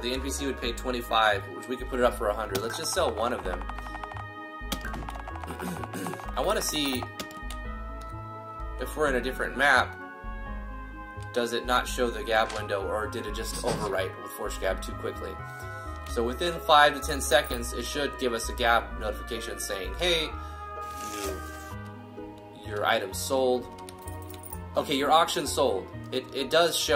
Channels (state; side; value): identical; both; correlation 1.00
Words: NPC would pay 25, which we could put it up for 100. Let's just sell one of them. I want to see if we're in a different map. Does it not show the gap window, or did it just overwrite with force gap too quickly? So within 5 to 10 seconds, it should give us a gap notification saying, hey, your item sold. Okay, your auction sold. It does